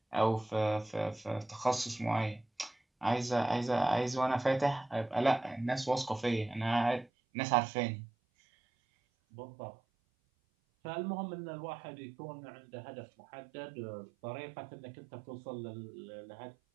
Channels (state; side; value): drops out; left; at 7.1 s